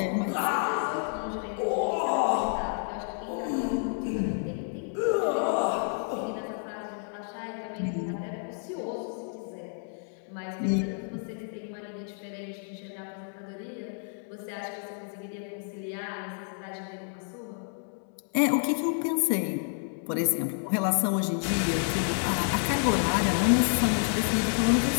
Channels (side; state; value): right; silent; 58 dB below the other